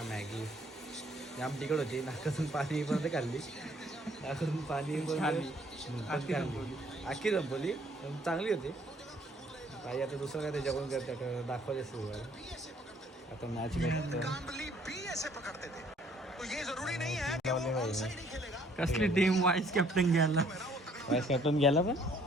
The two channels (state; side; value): normal; both; correlation 0.62